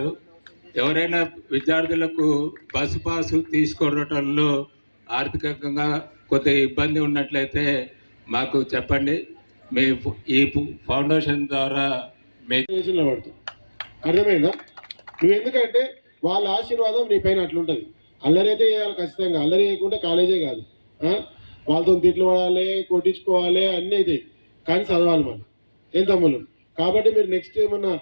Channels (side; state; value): both; inverted; correlation -1.00